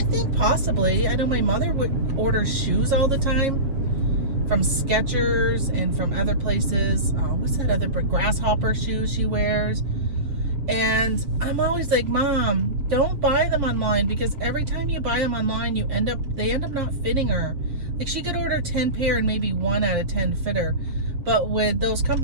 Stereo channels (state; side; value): late; left; 7.3 ms